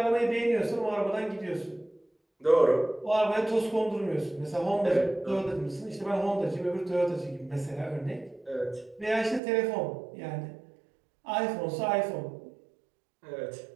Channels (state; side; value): drops out; left; at 9.4 s